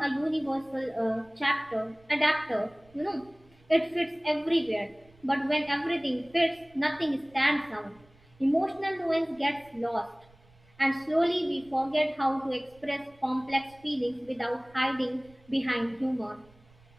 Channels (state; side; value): noise; right; rumble, 28 dB below the sound